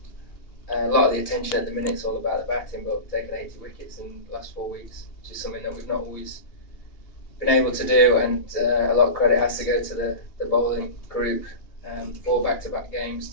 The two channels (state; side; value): late; right; 2.8 ms